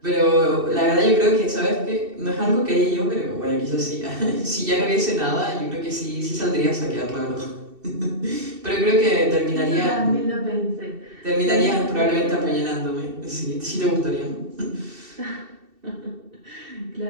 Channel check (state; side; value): late; left; 2.7 ms